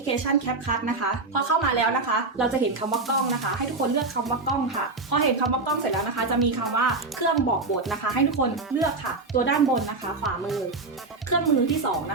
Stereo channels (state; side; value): quieter; left; 3.6 dB